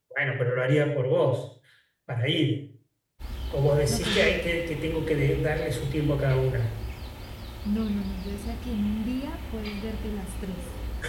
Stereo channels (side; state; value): both; identical; correlation 1.00